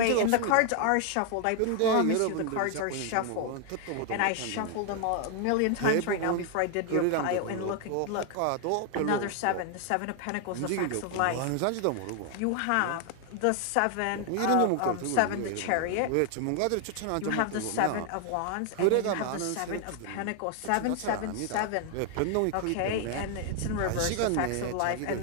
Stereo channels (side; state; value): both; different; correlation 0.00